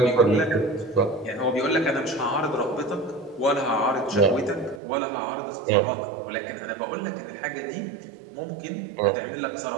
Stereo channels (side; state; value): left; drops out; at 4.8 s